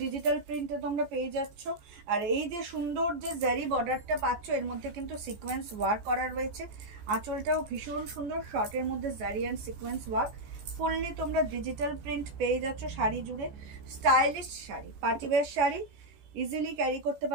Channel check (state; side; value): late; left; 14 ms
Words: ডিজিটাল প্রিন্টে তোমরা পেয়ে যাচ্ছ। আর এই যে সুন্দর যে জারি বর্ডারটা পাচ্ছ, এর মধ্যে কিন্তু সিকোয়েন্স ওয়ার্ক করা রয়েছে। আঁচলটাও ভীষণ সুন্দর, শর্টের মধ্যে জারি অ্যান্ড সিকোয়েন্স ওয়ার্ক, ফুললি তোমরা ডিজিটাল প্রিন্ট পেয়ে যাচ্ছ শাড়ি জুড়ে। Stylish sari, party wear sari, easily carry করতে